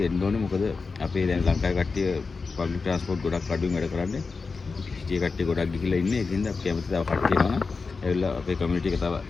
එන්න ඕනේ. මොකද අපේ දැන් ලංකාවේ කට්ටිය පබ්ලික් ට්‍රාන්ස්පෝර්ට් ගොඩක් අඩුවෙන් වැඩ කරන්නේ. සිටියේ කට්ටිය ගොඩක් ගිහිල්ලා ඉන්නේ. ඒකින්ද අපි කැමති තව කට්ටිය එනවා නම් ඇවිල්ලා අපේ කමියුනිටි එක තව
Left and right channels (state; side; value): quieter; right; 4.5 dB